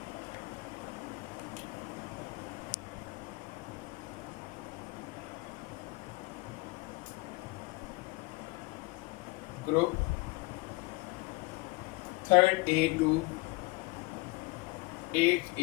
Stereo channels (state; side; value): quieter; right; 24.6 dB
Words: group 3rd A to 8th